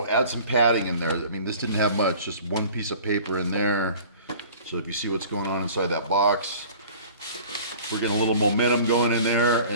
add some padding in there. I mean, this didn't have much, just one piece of paper in there. So if you see what's going on inside that box, we're getting a little momentum going in there,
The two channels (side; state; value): both; inverted; correlation -0.45